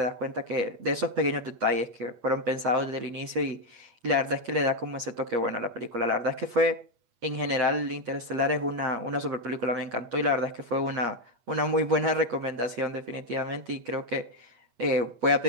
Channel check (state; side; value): late; left; 8.4 ms